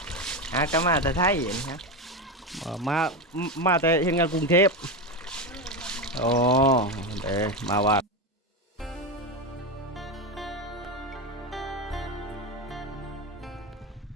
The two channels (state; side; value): normal; both; correlation 0.15